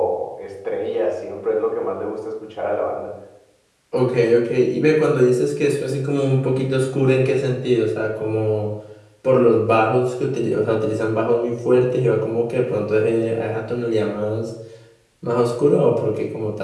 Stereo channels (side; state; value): both; identical; correlation 1.00